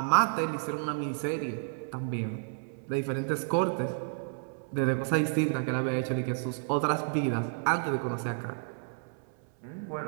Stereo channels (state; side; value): silent; left; 57 dB below the other